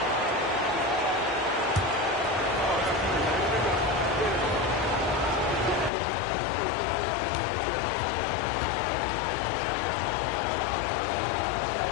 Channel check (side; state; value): right; drops out; at 5.9 s